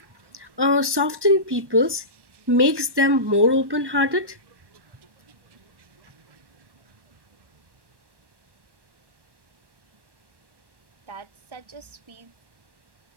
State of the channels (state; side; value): late; left; 1.1 ms